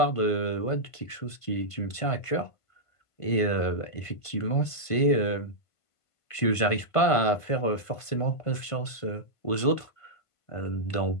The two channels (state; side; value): late; right; 1.5 ms